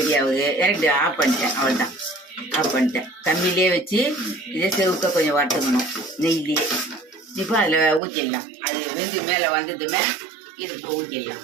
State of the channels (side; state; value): left; drops out; at 8.0 s